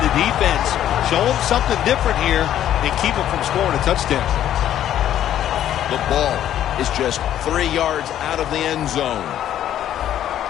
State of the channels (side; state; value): right; quieter; 11.3 dB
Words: defense show them something different here and keep them from scoring a touchdown? The ball is just 3 yards out of the end zone.